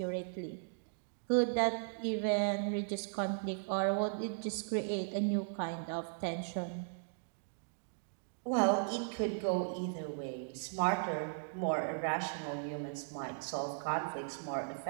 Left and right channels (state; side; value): silent; left; digital silence